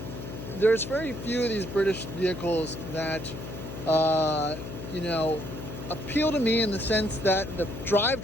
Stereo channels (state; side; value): noise; left; hum, 9 dB below the sound